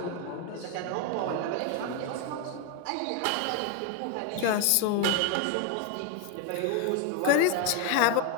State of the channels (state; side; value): different; both; correlation 0.01